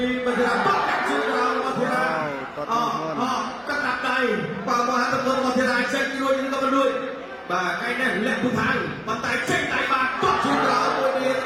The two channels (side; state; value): both; identical; correlation 1.00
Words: មកធីរាបាត់ជើងដល់មកធីរាកាត់ដាក់ដៃបាទមកហាត់ទៅមកធីរាចេញរួចក៏មិនរួចបាទកែនេះលាក់ពុថាប៉ុន្តែចេញដៃបាទបាត់ជើងដល់មួយនេះ